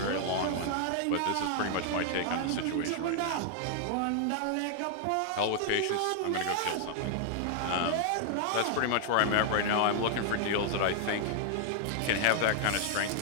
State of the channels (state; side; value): different; both; correlation -0.01